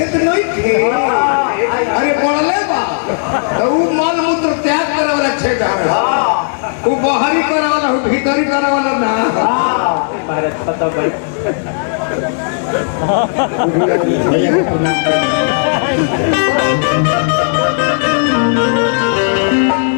नहीं थे। अरे बोले बा तो मल मूत्र त्याग करे वाला क्षेत्र है, वो बाहरी करे वाला भीतरी करे वाला ना। भारत पता भाई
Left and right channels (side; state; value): right; silent; 71 dB below the other